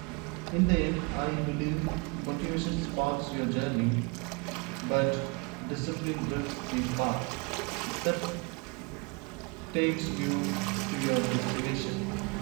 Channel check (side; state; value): left; quieter; 30.5 dB